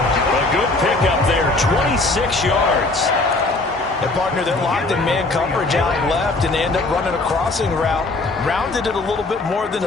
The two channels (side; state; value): right; quieter; 3.2 dB